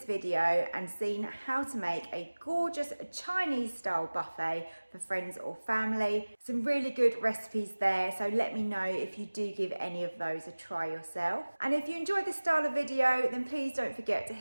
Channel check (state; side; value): inverted; both; correlation -1.00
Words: video and seen how to make a gorgeous Chinese style buffet for friends or family. Some really good recipes there, so let me know if you do give any of those a try yourself. And if you enjoyed this style of video, then please don't forget to